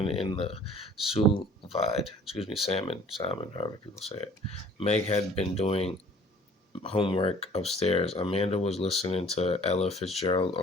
in the sous vide. Excuse me, salmon, however people say it. Meg had been doing homework upstairs. Amanda was listening to Ella Fitzgerald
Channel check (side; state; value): both; normal; correlation 0.52